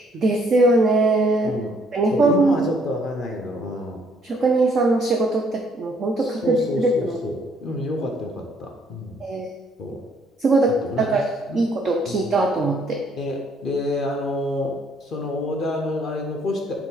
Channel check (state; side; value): normal; both; correlation 0.66